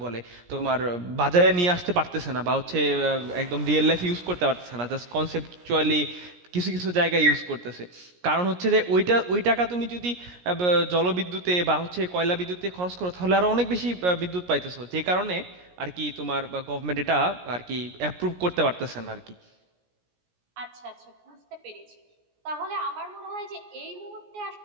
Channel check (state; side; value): late; left; 17 ms